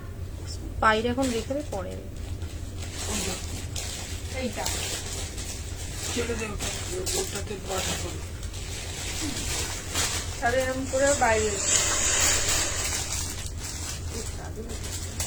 বাইরে এখন রেখে দে, পরে এইটা ছেড়ে দেবো ওটাতে বাটা করো। তাহলে এরকম করে বাইরে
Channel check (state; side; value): identical; both; correlation 1.00